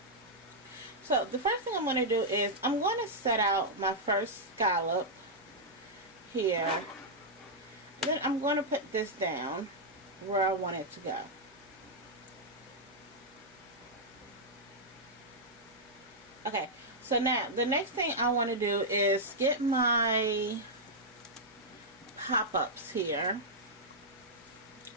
So the first thing I'm going to do is I'm going to set out my first scallop here. And then I'm going to put this down where I want it to go. Okay, so now the next thing I want to do is get my pop-ups here.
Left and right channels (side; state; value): both; normal; correlation -0.06